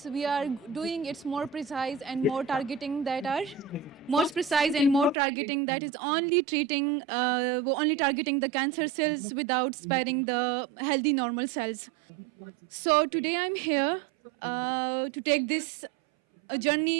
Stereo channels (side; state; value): left; drops out; at 5.2 s